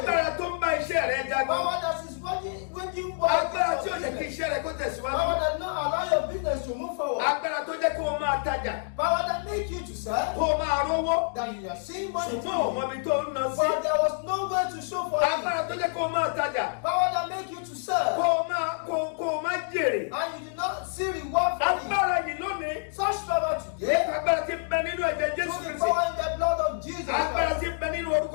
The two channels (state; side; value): silent; right; digital silence